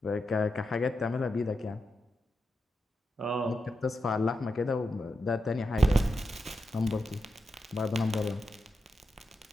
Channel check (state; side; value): normal; both; correlation 0.88